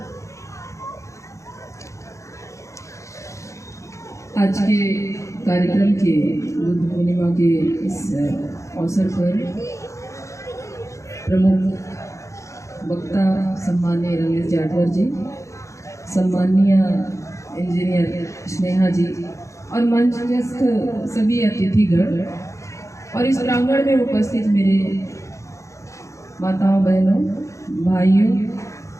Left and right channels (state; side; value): late; right; 0.15 ms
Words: आज के कार्यक्रम के बुद्ध पूर्णिमा के इस अवसर पर प्रमुख वक्ता सम्माननीय रमेश जाटवर जी, सम्माननीय इंजीनियर स्नेहा जी और मंचस्थ सभी अतिथिगण और इस प्रांगण में उपस्थित मेरे माताओं, बहनों, भाइयों,